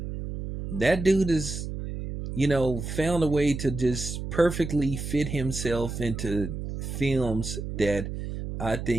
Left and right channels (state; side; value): noise; right; hum, 6 dB below the sound